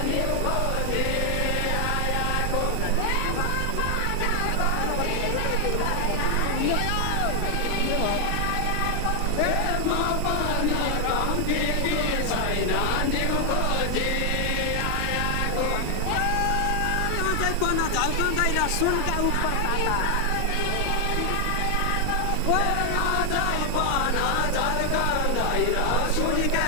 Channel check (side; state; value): both; different; correlation 0.00